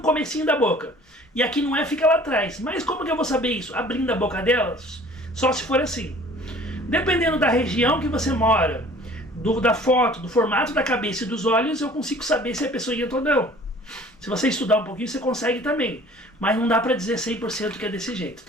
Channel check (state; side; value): normal; both; correlation 0.50